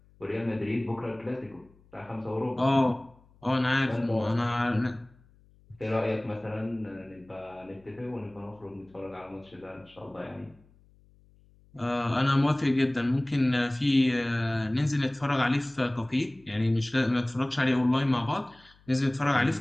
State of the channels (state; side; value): noise; left; hum, 29 dB below the sound